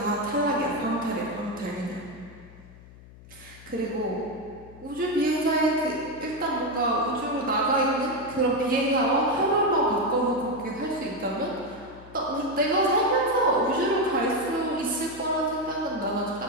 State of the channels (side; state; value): left; noise; hum, 20 dB below the sound